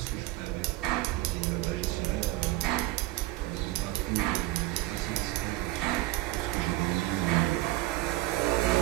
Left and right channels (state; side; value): quieter; left; 18.1 dB